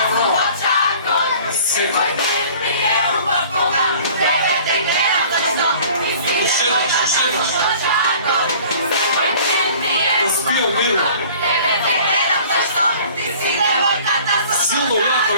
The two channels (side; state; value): both; inverted; correlation -0.48